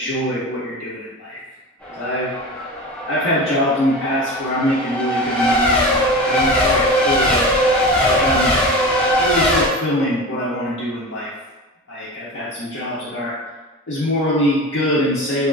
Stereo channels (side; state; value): both; normal; correlation 0.30